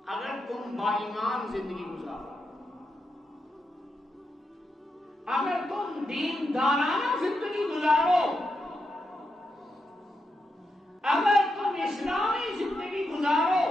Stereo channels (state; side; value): normal; both; correlation 0.85